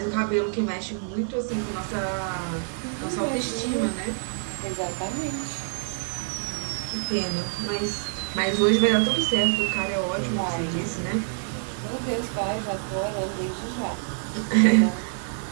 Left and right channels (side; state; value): left; silent; digital silence